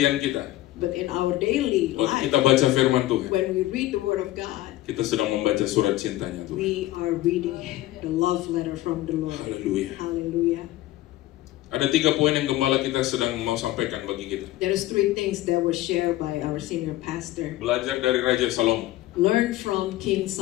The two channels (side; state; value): right; quieter; 16.1 dB